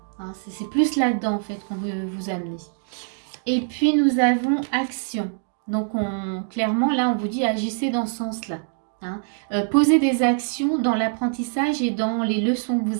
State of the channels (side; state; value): left; silent; 60 dB below the other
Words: hein. C'est plus là-dedans en fait qu'on veut vous amener. Et puis nous avons action. Donc clairement là on vous dit agissez dans ce sens-là, hein. Posez des actions dans l'apprentissage et dans les leçons que